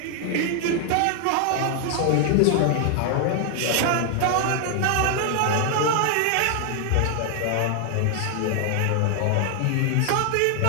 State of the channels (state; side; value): different; both; correlation 0.00